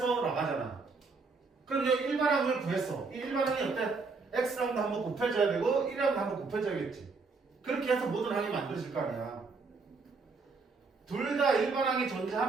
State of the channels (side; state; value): left; quieter; 4.3 dB